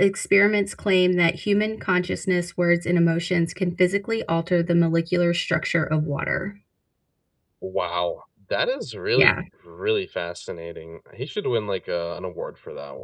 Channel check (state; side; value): identical; both; correlation 1.00